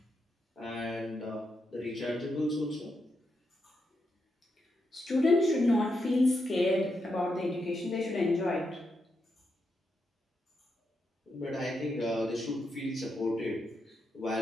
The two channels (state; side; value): normal; both; correlation 0.83